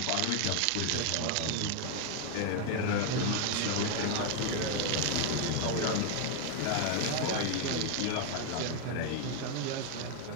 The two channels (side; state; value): both; different; correlation 0.00